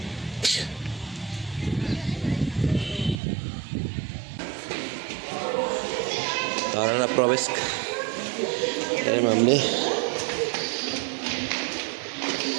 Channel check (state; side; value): drops out; left; at 3.2 s